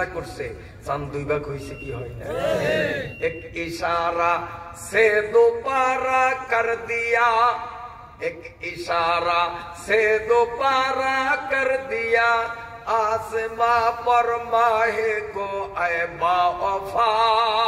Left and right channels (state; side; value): identical; both; correlation 1.00